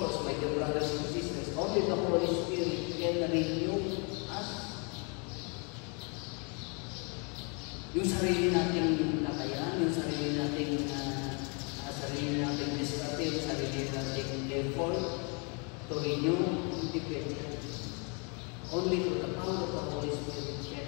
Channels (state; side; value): quieter; right; 34.8 dB